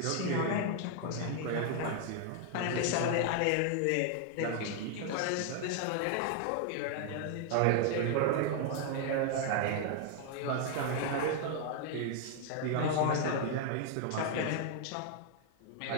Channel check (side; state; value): both; different; correlation 0.00